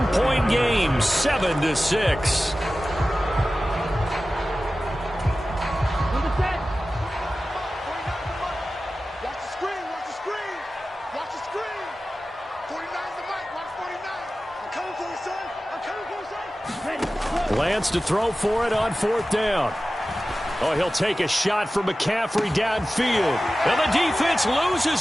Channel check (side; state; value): both; normal; correlation 0.95